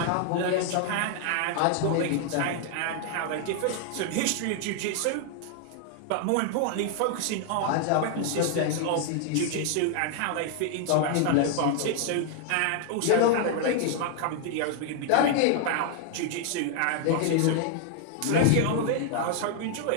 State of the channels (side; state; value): both; different; correlation 0.00